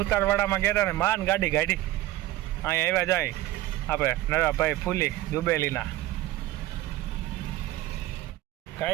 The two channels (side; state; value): left; quieter; 16.0 dB